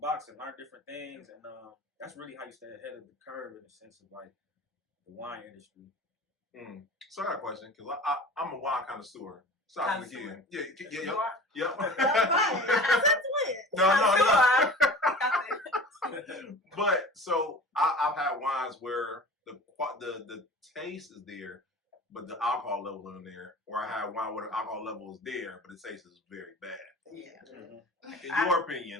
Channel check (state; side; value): normal; both; correlation 0.40